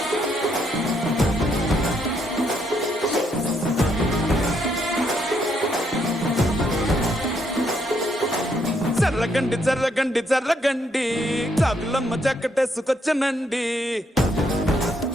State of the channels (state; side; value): normal; both; correlation 0.74